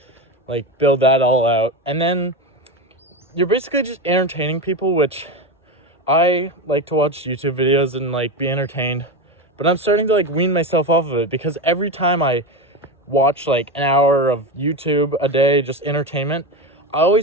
like build that all out. And then you're basically just entertaining people, which I like to watch YouTube videos and like be entertained, but I'm starting to like wean myself off of it, because every time I watch like an hour of YouTube a day, just entertainment, I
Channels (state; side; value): normal; both; correlation 0.19